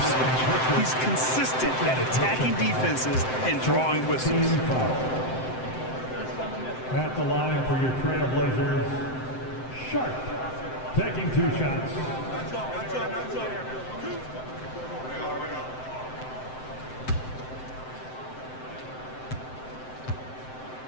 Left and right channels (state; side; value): late; right; 7.7 ms